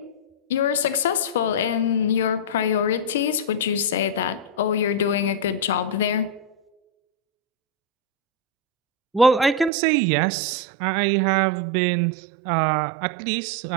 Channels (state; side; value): drops out; left; at 9.7 s